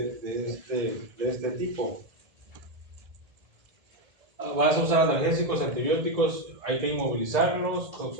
este tipo. Vas a usar analgésicos, antibióticos, hay que inmovilizarlos.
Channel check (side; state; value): left; late; 1.8 ms